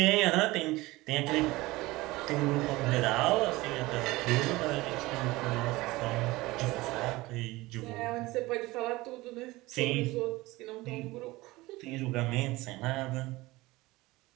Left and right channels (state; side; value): quieter; left; 20.2 dB